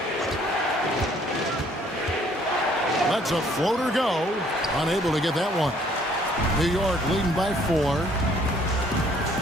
Lets a floater go. Unable to get that one. New York leading by 4.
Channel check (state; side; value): normal; both; correlation 0.62